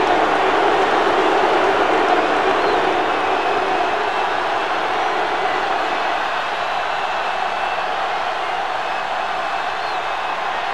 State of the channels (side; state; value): both; identical; correlation 1.00